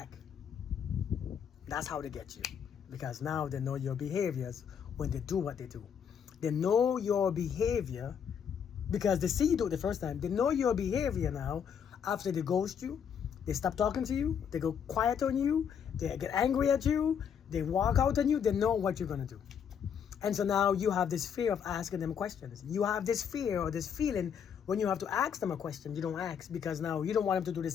That's how they get you. Because now they know your behaviors when they do what they do. They know your behavior because they see you do it the first time. They know your behavior now after they ghost you. They stop talking to you. They go quiet on you. They get angry at you. They walk out on you. They know what you're going to do. And so now you have this fear of asking them questions. You have this fear or this feeling when you have to ask them a question, you don't ask because now you don't want them to do the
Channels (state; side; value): quieter; right; 7.7 dB